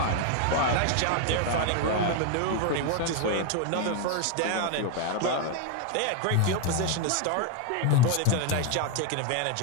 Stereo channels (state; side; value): different; both; correlation 0.01